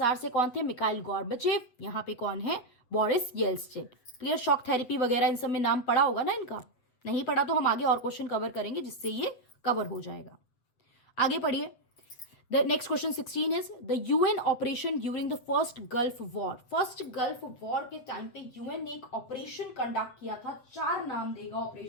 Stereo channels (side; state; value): right; late; 8.2 ms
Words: से कौन थे, मिकाइल गॉर्बाचेव, यहाँ पे कौन है, Boris Yeltsin. Clear. Shock therapy वगैरह इन सब में नाम पढ़ा होगा ना इनका, नहीं पढ़ा तो हम आगे और क्वेश्चन कवर करेंगे जिससे ये कवर हो जाएगा। आगे पढ़िए। The next question 16 is the UN operation during the first Gulf War. First Gulf War के टाइम पे UN ने एक ऑपरेशन कंडक्ट किया था, 4 नाम देगा